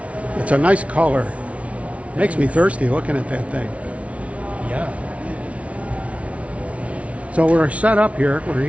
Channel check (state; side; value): late; left; 0.064 ms